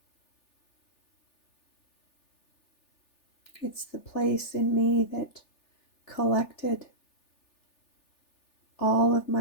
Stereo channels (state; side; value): late; right; 3.4 ms